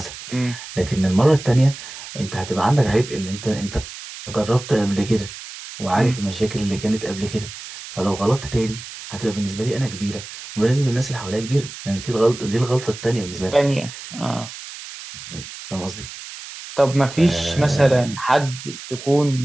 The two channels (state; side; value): noise; right; hiss, 13 dB below the sound